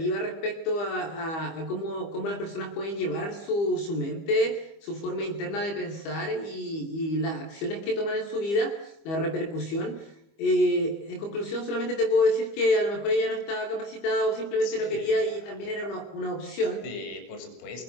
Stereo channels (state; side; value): late; right; 25 ms